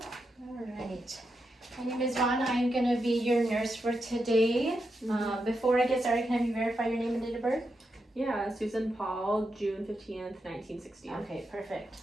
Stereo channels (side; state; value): both; normal; correlation 0.86